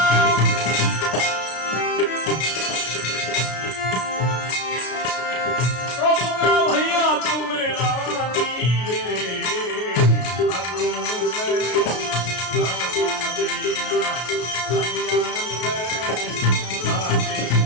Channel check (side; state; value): right; late; 33 ms